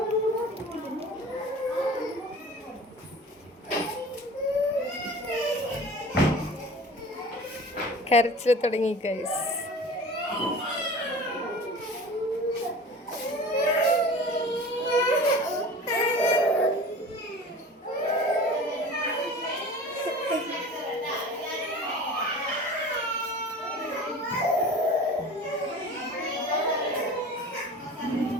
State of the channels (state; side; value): normal; both; correlation 0.39